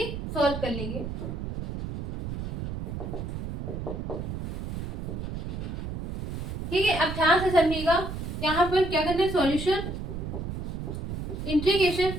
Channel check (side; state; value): right; noise; rumble, 5 dB below the sound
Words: सॉल्व कर लेंगे। ठीक है, अब ध्यान से समझिएगा। यहाँ पर क्या करना है, सॉल्यूशन इंटीग्रेशन।